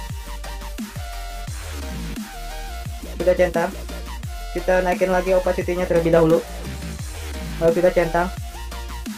Sudah centang, kita naikin lagi opacity-nya terlebih dahulu, lalu sudah centang.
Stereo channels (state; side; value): identical; both; correlation 1.00